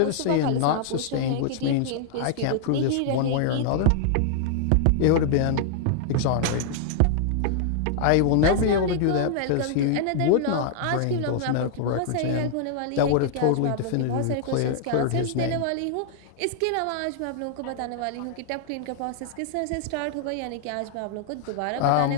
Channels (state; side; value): different; both; correlation -0.01